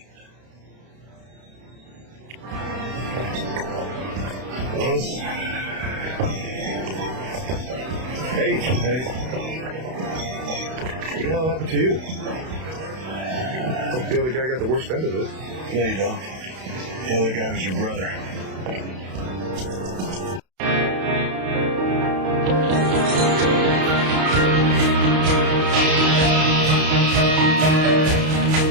Hey. What the hell happened to you? Hope the other guy got the worst end of it. No, you don't. The other guy was your brother.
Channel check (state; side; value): late; left; 32 ms